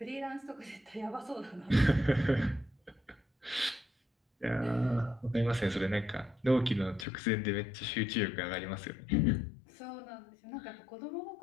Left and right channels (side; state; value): right; drops out; at 7.1 s